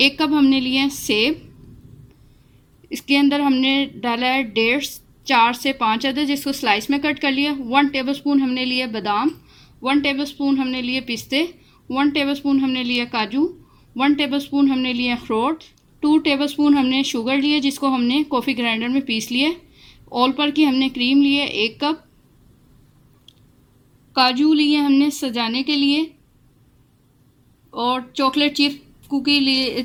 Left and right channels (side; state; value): both; identical; correlation 1.00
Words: कप हमने लिए सेब। इसके अंदर हमने डाला है डेट्स 4 से 5 अदद, जिसको स्लाइस में कट कर लिया। 1 टेबलस्पून हमने लिए बादाम, 1 टेबलस्पून हमने लिए पिस्ते, 1 टेबलस्पून हमने लिए काजू, 1 टेबलस्पून हमने लिए अखरोट, 2 टेबलस्पून हमने शुगर लिए, जिसको हमने कॉफ़ी ग्राइंडर में पीस लिया। ऑल पर की हमने क्रीम लिए 1 कप, काजू लिए हमने सजाने के लिए, और चॉकलेट चिप्स कुकी लिए